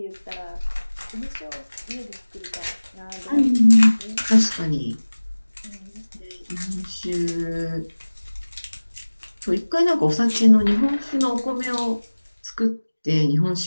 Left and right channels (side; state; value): both; inverted; correlation -1.00